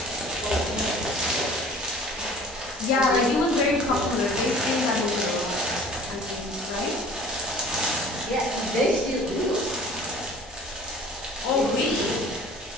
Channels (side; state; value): both; normal; correlation 0.47